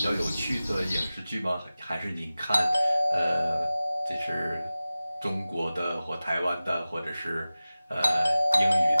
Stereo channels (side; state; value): both; inverted; correlation -0.96